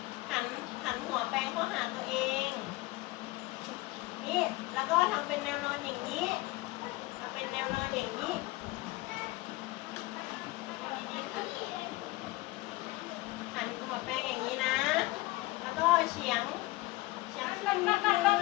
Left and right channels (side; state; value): right; quieter; 20.6 dB